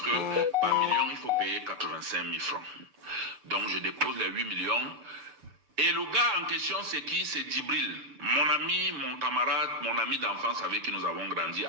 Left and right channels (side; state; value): left; late; 6.9 ms